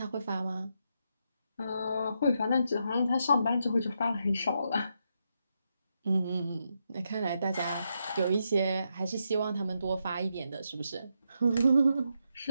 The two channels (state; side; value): inverted; both; correlation -0.82